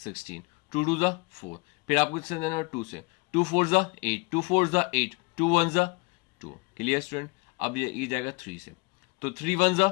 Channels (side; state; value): right; quieter; 27.2 dB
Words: 2 2 जा 4, फिर आपको इससे देना 2 से, 2 4 जा 8, 2 4 जा 8, 2 1 जा 2, क्लियर स्टूडेंट। अब ये जाएगा 3 से, तो 3 1 जा